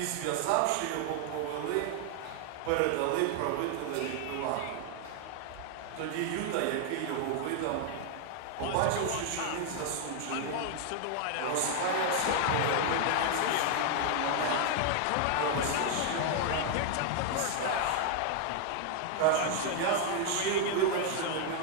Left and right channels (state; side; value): different; both; correlation 0.00